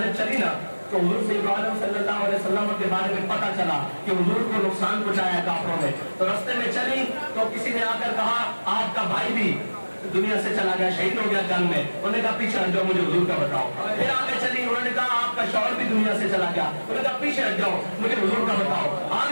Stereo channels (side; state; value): both; inverted; correlation -1.00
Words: چلی نا تو حضور صلی اللہ علیہ وسلم کے بارے میں پتہ چلا کہ حضور کو نقصان پہنچایا کافروں نے، تو رستے میں چلی تو کسی نے آ کر کہا آپ کا بھائی بھی دنیا سے چلا گیا، شہید ہو گیا جنگ میں۔ انہوں نے کہا پیچھے ہٹ جاؤ، مجھے حضور کا بتاؤ۔ پھر آگے چلی، انہوں نے کہا آپ کا شوہر بھی دنیا سے چلا گیا، انہوں نے کہا پیچھے ہٹ جاؤ، مجھے حضور کا بتاؤ۔